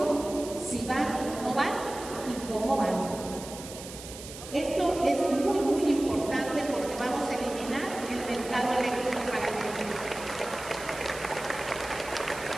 si van, no van y cómo van. Esto es muy, muy importante porque vamos a eliminar el mercado eléctrico para el mundo.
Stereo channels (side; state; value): right; noise; hiss, 13 dB below the sound